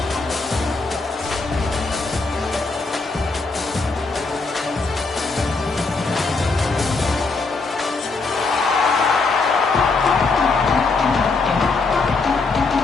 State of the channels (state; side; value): quieter; right; 4.0 dB